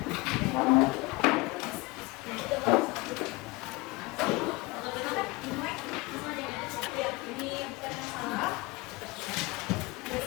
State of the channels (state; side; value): quieter; right; 23.2 dB